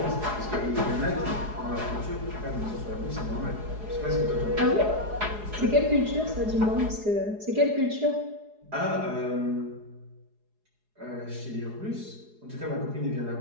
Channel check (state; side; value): late; left; 4.8 ms